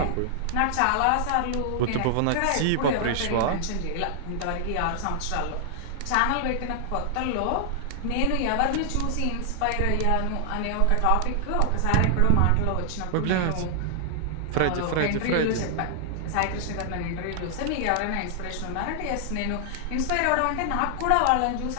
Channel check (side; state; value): both; different; correlation 0.00